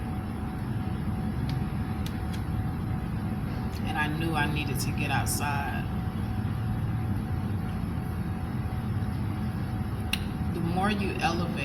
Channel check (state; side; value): identical; both; correlation 1.00